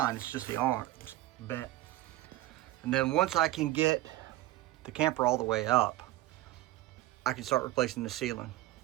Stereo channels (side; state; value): left; quieter; 16.2 dB